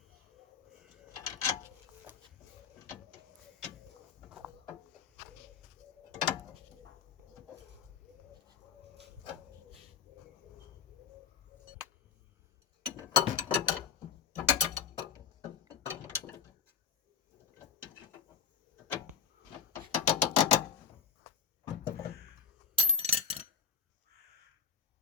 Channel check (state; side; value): quieter; right; 6.7 dB